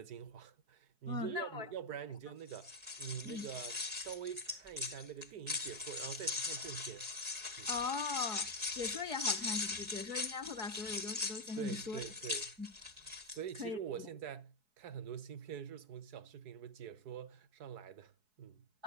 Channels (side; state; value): left; late; 4.7 ms